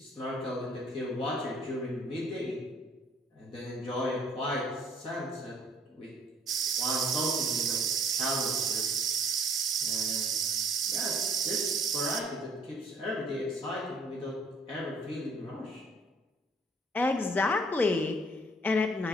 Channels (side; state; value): both; normal; correlation 0.59